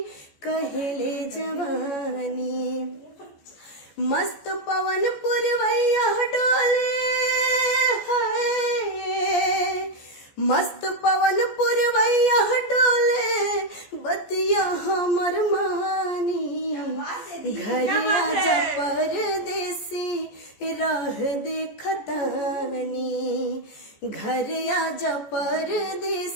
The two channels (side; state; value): right; late; 14 ms